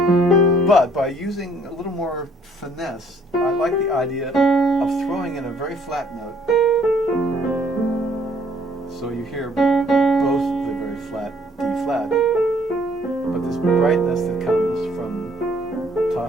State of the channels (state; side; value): normal; both; correlation 0.62